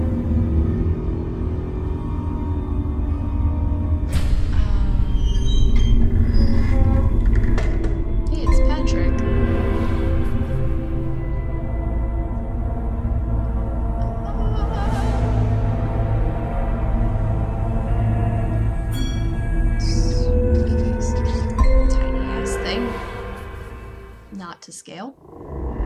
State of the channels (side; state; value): both; identical; correlation 1.00